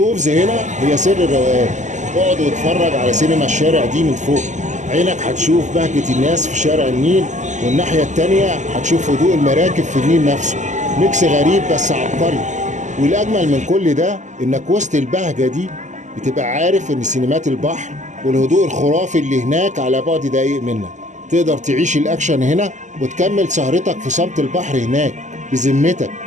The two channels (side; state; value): left; late; 0.35 ms